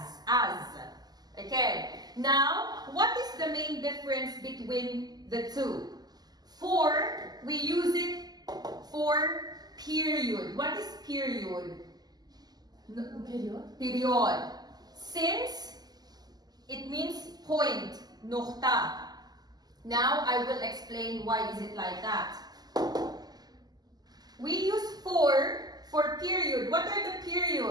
Okay, now what is the main difference between the two? For, we use it for period. What is period? Period. Since, it means point, nukta. Now I will explain why is it like that. We use for period. What are the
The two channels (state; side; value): late; left; 0.20 ms